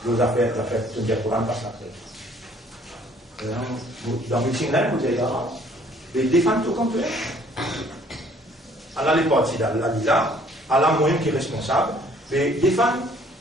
Nos affaires, tu me dis, le Coran pas sacré. Dans le meeting là, vous avez dit, défendre tout comme tu es. Allah les partis d'Allah, là, Allah moi-même qui est responsable, mais défendre,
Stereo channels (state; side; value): normal; both; correlation 0.59